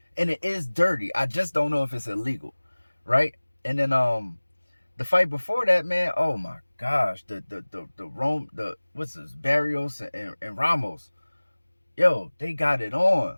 and it is dirty. I just don't know if it's illegal, right? And then the fight before that, man, oh my gosh, what's this, Barrios and Ramos. Yo, they got it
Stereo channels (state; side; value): inverted; both; correlation -1.00